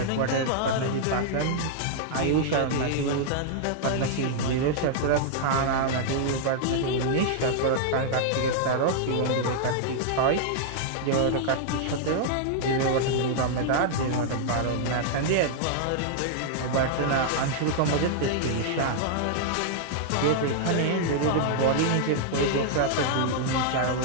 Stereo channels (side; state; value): both; different; correlation -0.01